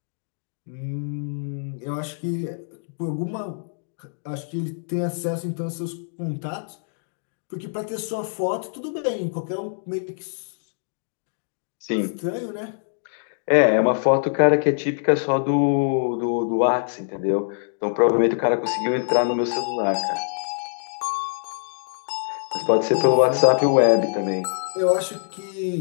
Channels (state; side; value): silent; right; digital silence